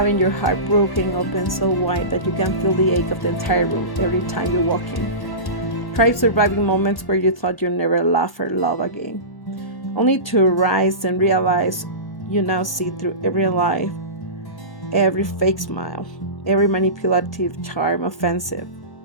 your heart broken open so wide that you can feel the ache of the entire room every time you walk in. Try surviving moments where you thought you'd never laugh or love again, only to rise and realize you now see through every lie, every fake smile, every manipulative charm offensive.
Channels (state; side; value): late; right; 1.1 ms